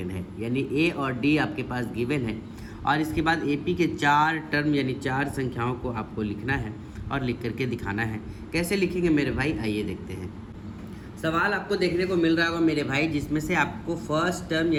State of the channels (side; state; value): both; identical; correlation 1.00